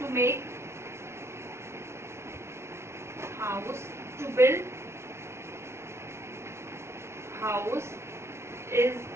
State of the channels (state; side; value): late; left; 0.13 ms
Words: make house, to build house is